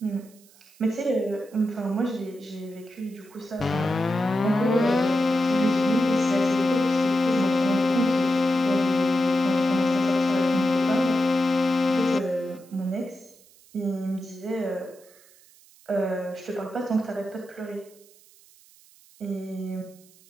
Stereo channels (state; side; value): noise; right; hiss, 27 dB below the sound